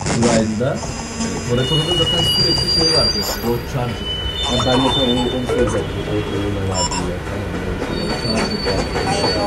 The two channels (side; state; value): both; identical; correlation 1.00